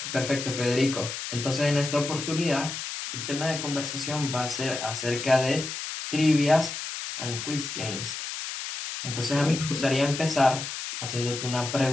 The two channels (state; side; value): noise; left; hiss, 6 dB below the sound